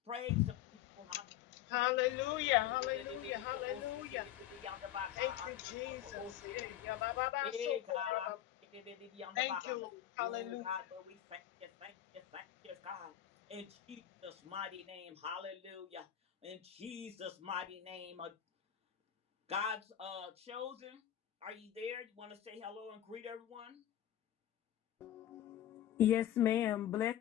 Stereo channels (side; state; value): right; quieter; 11.8 dB